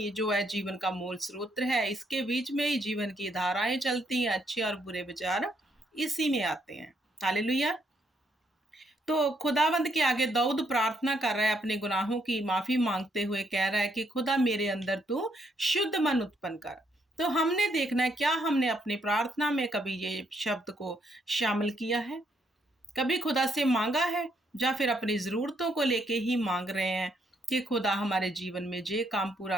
जो है जीवन का मूल स्रोत है, इसके बीच में ही जीवन की धाराएं चलती हैं, अच्छे और बुरे विचार इसी में आते हैं। हालेलुया। तो खुदावंद के आगे दाऊद प्रार्थना कर रहा है, अपने गुनाहों की माफी मांगते हुए कह रहा है कि खुदा मेरे अंदर तू शुद्ध मन उत्पन्न कर। तो हमने देखना है, क्या हमने अपनी प्रार्थना में कभी ये शब्द को शामिल किया है? कभी खुदा से मांगा है? या फिर अपनी ज़रूरतों को लेके ही मांग रहे हैं कि खुदा हमारे जीवन में ये काम पूरा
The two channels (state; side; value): normal; both; correlation 0.74